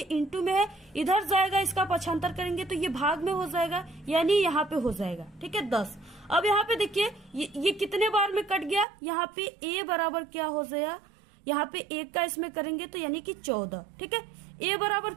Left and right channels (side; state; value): left; drops out; at 8.8 s